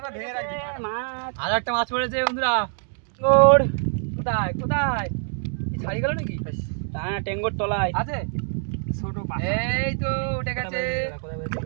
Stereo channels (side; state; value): left; silent; 62 dB below the other